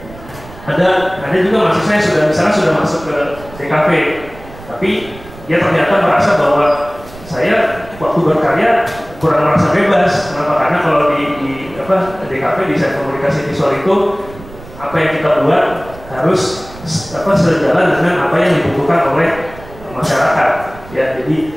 ada juga mahasiswa yang misalnya sudah masuk ke DKV, tapi dia ternyata merasa bahwa saya waktu berkarya kurang merasa bebas. Kenapa? Karena kalau di DKV, desain komunikasi visual itu apa yang kita buat harus sejalan dengan apa yang dibutuhkan oleh masyarakat ya.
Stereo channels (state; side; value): noise; right; rumble, 18 dB below the sound